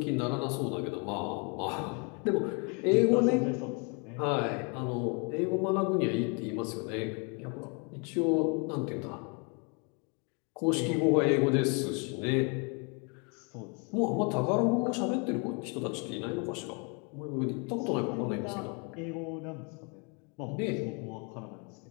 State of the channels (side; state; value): right; quieter; 34.4 dB